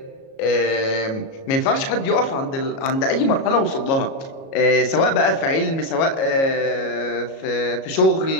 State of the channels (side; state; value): right; late; 37 ms